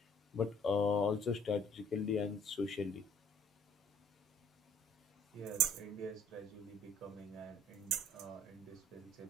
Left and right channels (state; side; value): normal; both; correlation 0.56